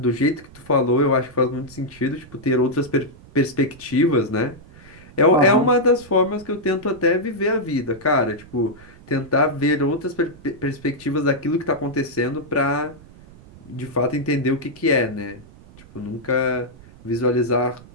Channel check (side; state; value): right; noise; rumble, 22 dB below the sound